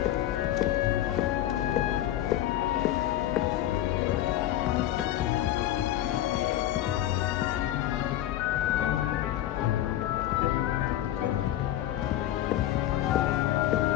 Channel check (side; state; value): right; quieter; 13.1 dB